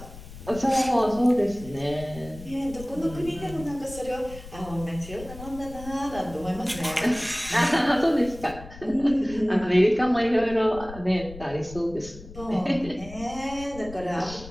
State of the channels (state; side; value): noise; left; rumble, 15 dB below the sound